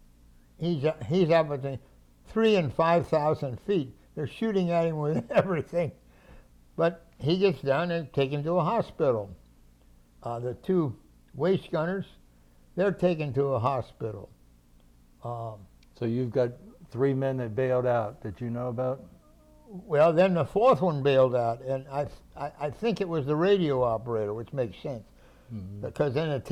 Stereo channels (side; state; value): both; identical; correlation 1.00